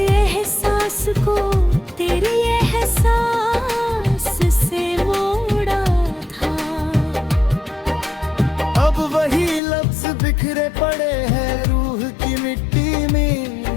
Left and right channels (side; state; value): right; drops out; at 9.6 s